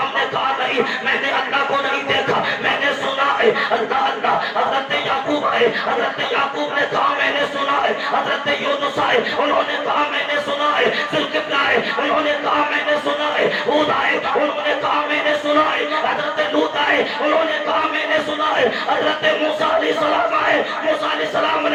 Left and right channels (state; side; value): identical; both; correlation 1.00